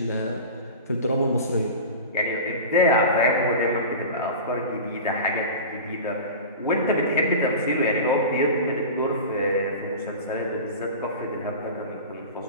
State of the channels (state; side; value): inverted; both; correlation -0.31